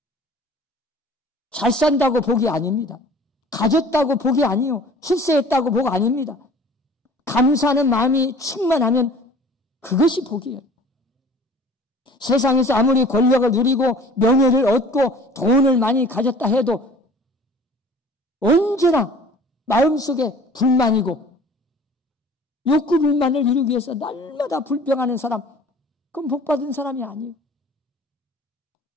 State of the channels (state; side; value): normal; both; correlation 0.47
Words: 잘 산다고 복이 아닙니다. 가졌다고 복이 아니요. 출세했다고 복 아닙니다. 감사하는 마음이 충만하면 그것이 복이에요. 세상에서 아무리 권력을 누리고 명예를 얻고 돈을 많이 가졌다 해도 언제나 마음속에 불만이고 욕구 불만을 이루기 위해서 날마다 불평하는 사람, 그건 복받은 사람이 아니에요.